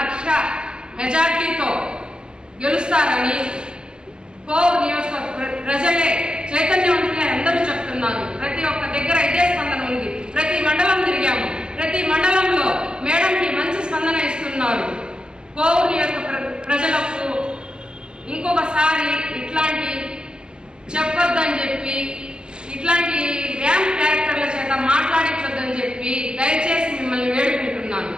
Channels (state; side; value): late; left; 0.047 ms